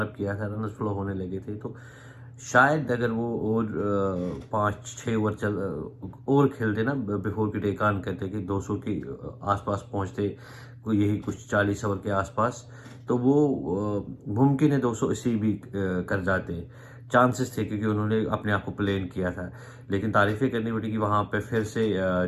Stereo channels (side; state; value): both; identical; correlation 1.00